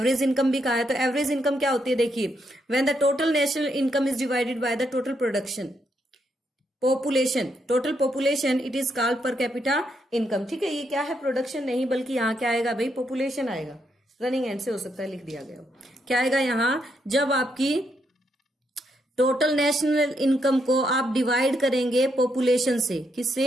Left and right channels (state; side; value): normal; both; correlation 0.78